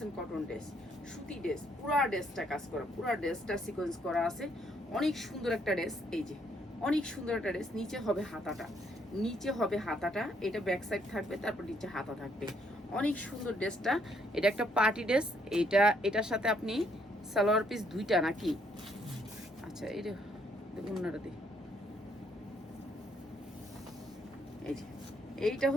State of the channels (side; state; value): both; normal; correlation 0.70